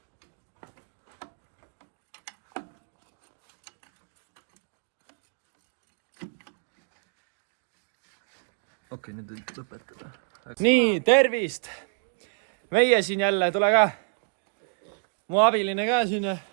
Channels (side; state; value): left; silent; 58 dB below the other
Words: Okei, nüüd võib lõpetada. Nii, tervist! Meie siin jälle, tule ka. Mu abiline ka siin.